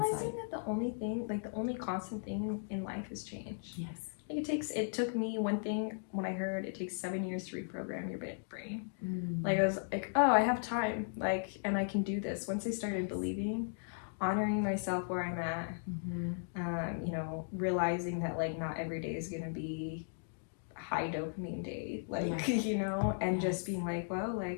insight. that the only thing, like the only constant thing in life is change. Yes. Like it took me one thing when I heard it takes 7 years to reprogram your brain. Like I was like, oh, I have time, like, and I can do this. Once I started believing, honoring myself where I'm at, you know, realizing that like not every day is gonna be a high dopamine day, like you know, and just being like, well,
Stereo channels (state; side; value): silent; right; digital silence